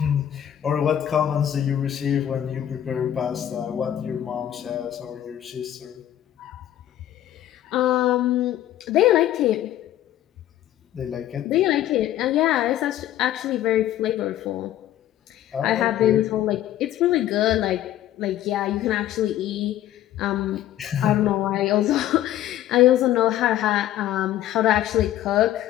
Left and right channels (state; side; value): quieter; right; 12.3 dB